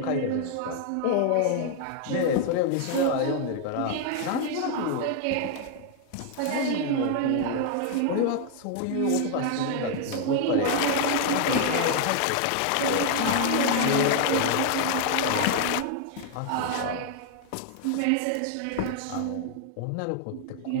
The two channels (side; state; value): both; different; correlation 0.00